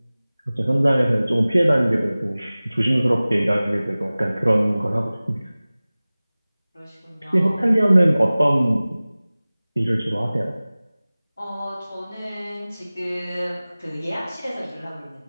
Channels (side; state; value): both; inverted; correlation -0.98